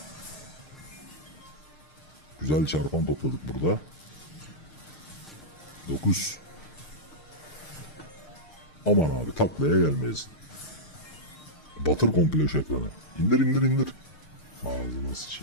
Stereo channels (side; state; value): right; late; 6.6 ms